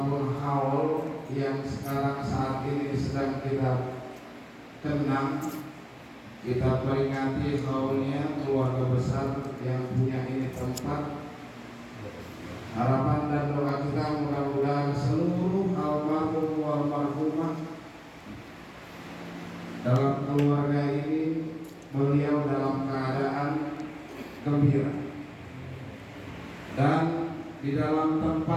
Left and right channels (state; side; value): identical; both; correlation 1.00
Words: haul yang sekarang saat ini sedang kita kenang, kita peringati haulnya keluarga besar yang punya ini tempat. Harapan dan doa kita mudah-mudahan seluruh almarhum almarhumah dalam keluarga ini beliau dalam keadaan gembira dan di dalam